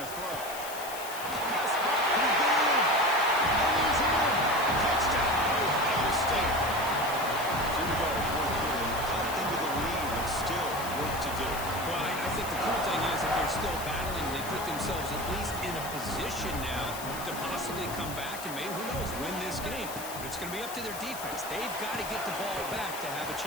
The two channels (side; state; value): left; noise; hiss, 11 dB below the sound